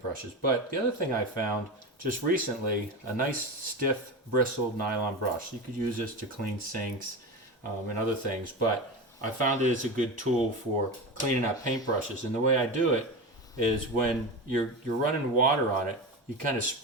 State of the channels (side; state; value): both; normal; correlation 0.23